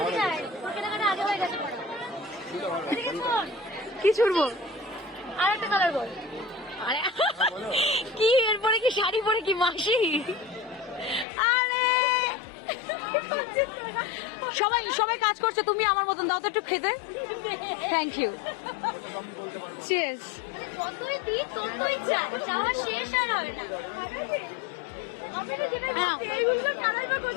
কি ছুড়বো। আর একটা কালার বল। আরে কি এরপরে কি শাড়ি পরে কি মাসি? আরে সবাই সবাই কাজ করছে, তুমি আমার মতন দাও তো একটু খেতে। Thank you. চিয়ার্স।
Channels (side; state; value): right; drops out; at 11.2 s